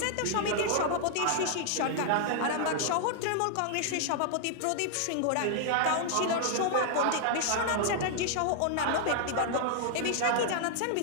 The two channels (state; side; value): different; both; correlation -0.01